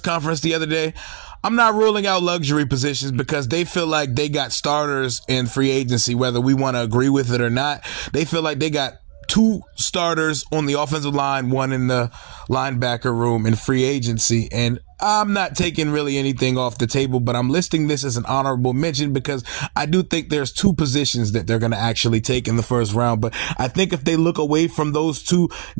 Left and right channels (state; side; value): silent; left; digital silence